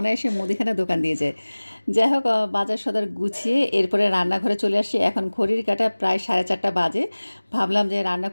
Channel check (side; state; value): both; inverted; correlation -1.00